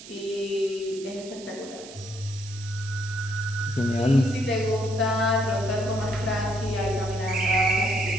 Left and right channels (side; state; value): right; noise; hiss, 16 dB below the sound